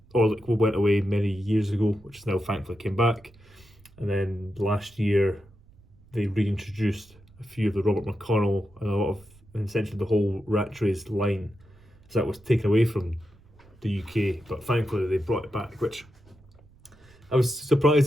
Orlik went away many years ago, which is now thankfully came back. And then last year, they reintroduced a few of the Robert McConnell and a lot of, and essentially the whole Rattrays line. So that was taken away from the UK, but thankfully they brought it back, which I was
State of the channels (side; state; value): right; noise; rumble, 27 dB below the sound